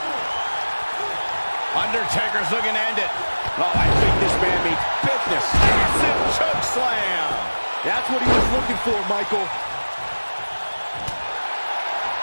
Undertaker's looking to end it. Oh, I think this man means business. Massive choke slam. That's what he was looking for, Michael.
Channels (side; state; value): both; inverted; correlation -1.00